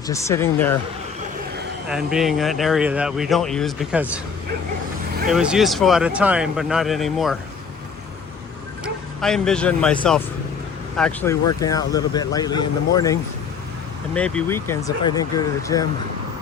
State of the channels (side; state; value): right; quieter; 6.0 dB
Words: just sitting there and being an area that we don't use because it was useful at a time, but not anymore. I envision myself actually working out a little bit lightly in the morning and maybe weekends if I didn't go to the gym.